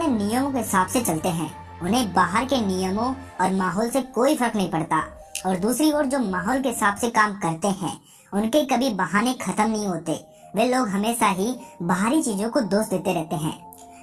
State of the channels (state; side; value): identical; both; correlation 1.00